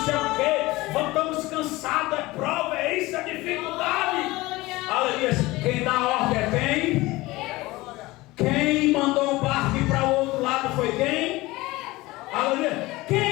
sei o quê? Estamos cansados, é prova, é isso, é dificuldade. Aleluia. Quem dá ordem é quem? Quem mandou o barco ir para o outro lado foi quem? Aleluia.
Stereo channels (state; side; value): quieter; right; 20.2 dB